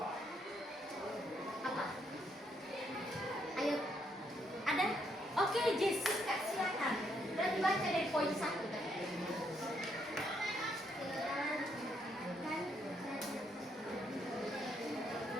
Apa? Ayo. Ada? Oke, Jessica, silakan. Berarti baca dari poin 1 tadi.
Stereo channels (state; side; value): normal; both; correlation 0.74